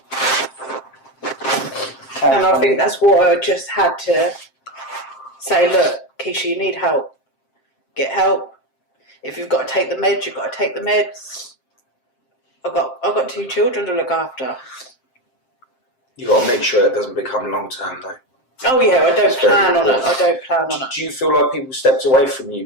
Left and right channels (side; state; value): right; late; 7.6 ms